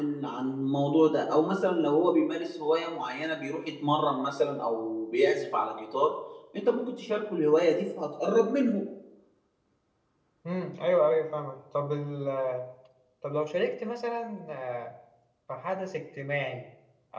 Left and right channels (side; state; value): both; identical; correlation 1.00